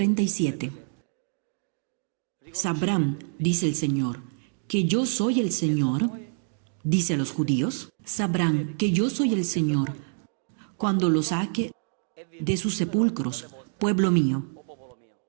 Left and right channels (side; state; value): left; silent; digital silence